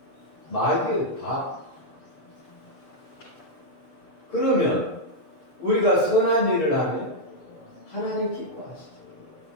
마귀의 밥. 그러면 우리가 선한 일을 하면 하나님 기뻐하시죠.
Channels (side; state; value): right; late; 7.3 ms